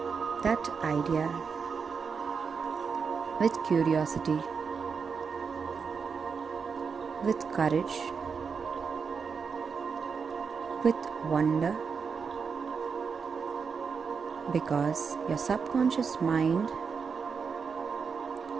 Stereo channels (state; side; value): quieter; left; 5.7 dB